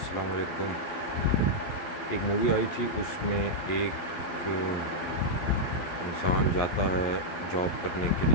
علیکم. ایک مووی آئی تھی، اس میں ایک انسان جاتا ہے جاب کرنے کے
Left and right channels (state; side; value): late; right; 11 ms